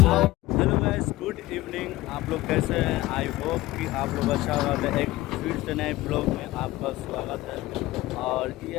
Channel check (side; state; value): right; quieter; 17.8 dB